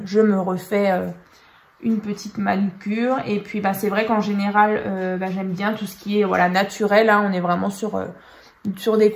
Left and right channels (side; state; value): both; identical; correlation 1.00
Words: je me refais une petite manucure. Et puis, c'est vrai qu'en général, j'aime bien tout ce qui est naturel. Hein. On est vraiment sur des